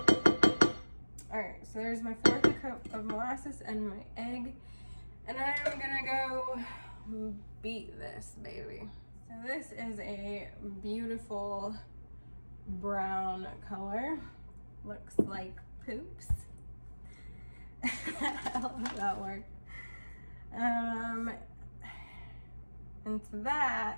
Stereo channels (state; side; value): inverted; both; correlation -1.00